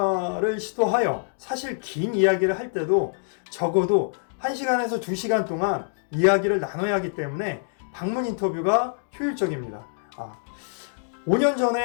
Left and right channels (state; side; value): silent; right; digital silence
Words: 시도하여 사실 긴 이야기를 할 때도 적어도 1시간에서 2시간 동안 이야기를 나눠야 하기 때문에 방문 인터뷰가 효율적입니다. 5년